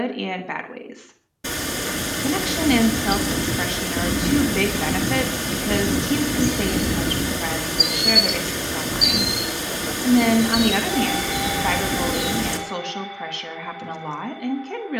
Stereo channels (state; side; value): identical; both; correlation 1.00